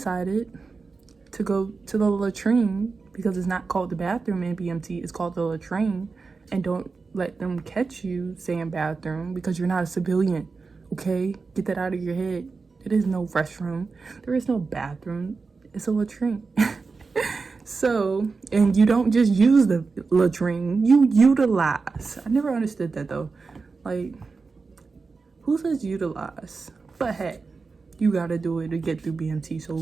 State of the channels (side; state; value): left; quieter; 4.4 dB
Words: to go to the latrine, because it's not called the bathroom in BMT, it's called the latrine. And don't let them catch you saying bathroom because you're not a civilian, okay? Get that out of your head. There is no restroom. There is no bathroom. It's a latrine. So, and you don't just use the latrine, you utilize. I never understood that though. Like, who says utilize? But hey, you gotta do it to get through BMT,